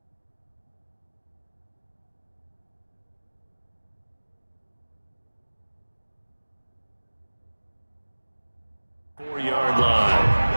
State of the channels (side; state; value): both; inverted; correlation -1.00